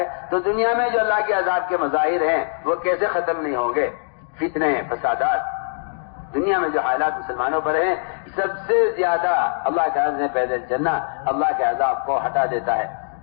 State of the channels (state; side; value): silent; right; digital silence